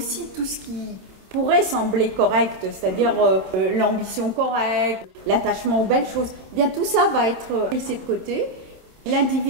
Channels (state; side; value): late; left; 27 ms